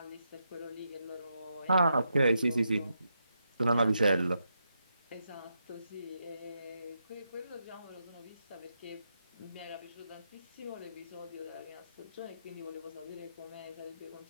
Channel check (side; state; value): both; inverted; correlation -0.83